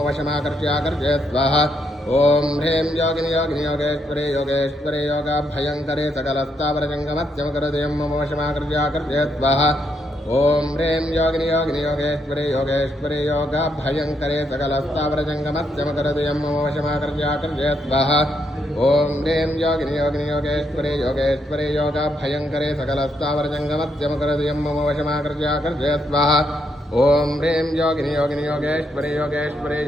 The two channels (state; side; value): normal; both; correlation 0.77